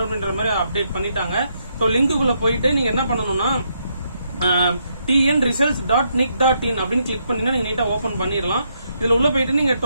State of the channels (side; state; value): both; inverted; correlation -0.77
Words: அப்படின்ற மாதிரி அப்டேட் பண்ணிட்டாங்க. ஸோ லிங்க்குள்ள போயிட்டு நீங்க என்ன பண்ணணும்னா tnresults.nic.in அப்படின்னு கிளிக் பண்ணீங்கன்னா நீங்க நீட்டா ஓபன் பண்ணிடலாம். இதுல உள்ள போயிட்டு நீங்க